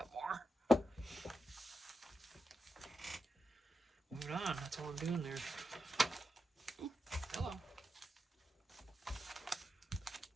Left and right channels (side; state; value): both; normal; correlation 0.87